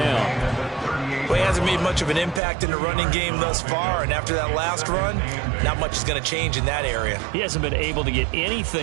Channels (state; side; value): drops out; left; at 2.4 s